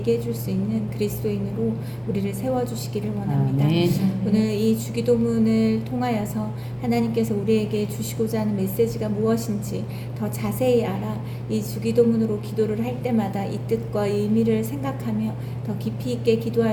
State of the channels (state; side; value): identical; both; correlation 1.00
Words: 줄 수 있는 그리스도인으로 우리를 세워주시기를 원합니다. 오늘 이 주기도문을 통하여서 하나님께서 우리에게 주시고자 하는 메시지가 무엇인지 더 자세히 알아 이 주기도문으로 기도를 할 때마다 이 뜻과 의미를 생각하며 더 깊이 있게